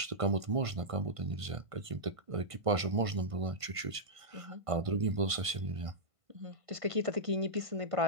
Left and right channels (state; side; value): late; left; 1.5 ms